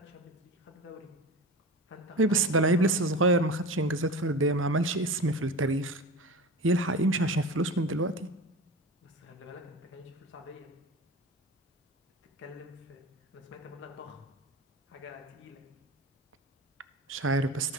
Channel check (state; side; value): normal; both; correlation 0.30